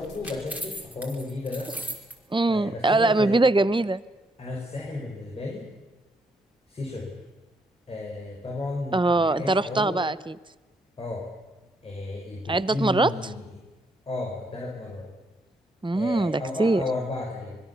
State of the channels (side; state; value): both; normal; correlation 0.74